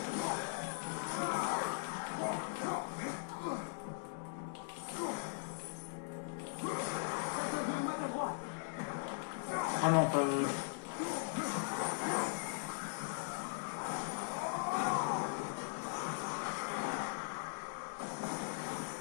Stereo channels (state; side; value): silent; right; digital silence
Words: Ah non, pas...